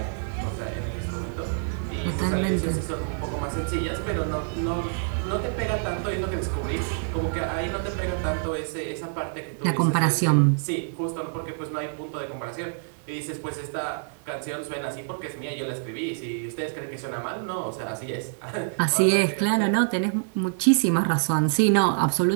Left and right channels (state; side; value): silent; left; digital silence